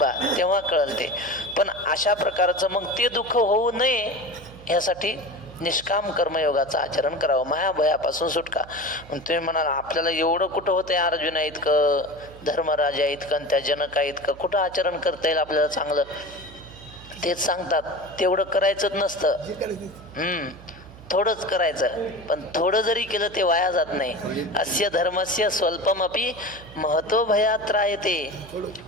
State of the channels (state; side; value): noise; right; hum, 19 dB below the sound